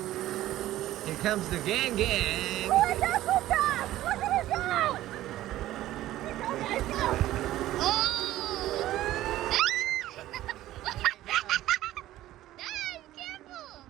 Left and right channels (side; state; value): left; quieter; 14.7 dB